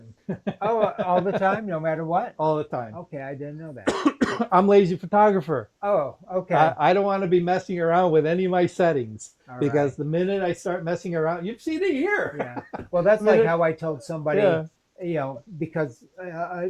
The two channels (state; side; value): identical; both; correlation 1.00